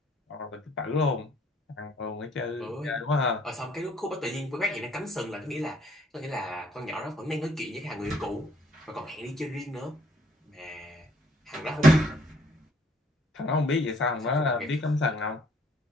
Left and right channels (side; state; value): both; normal; correlation 0.62